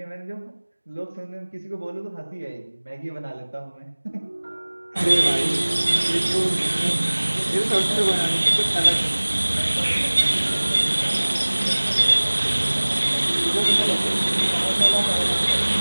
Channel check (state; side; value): inverted; both; correlation -1.00